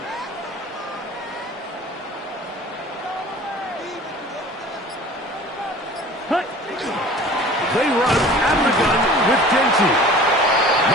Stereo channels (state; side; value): normal; both; correlation 0.44